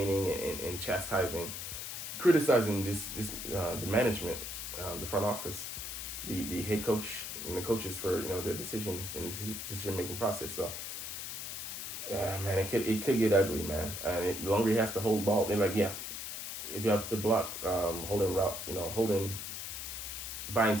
and chastising, criticizing the management, the front office, the head coach and the coaches for their decisions and decision making process. So yeah, man, it could get ugly, man. And the longer he has to hold ball, and if you have to block, buying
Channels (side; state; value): left; noise; hiss, 6 dB below the sound